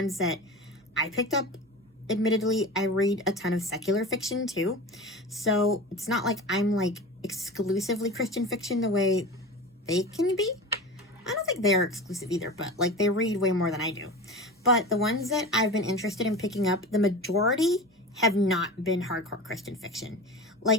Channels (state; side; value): normal; both; correlation 0.31